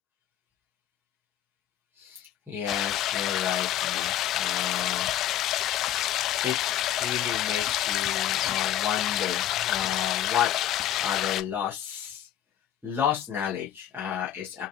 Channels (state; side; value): quieter; right; 11.3 dB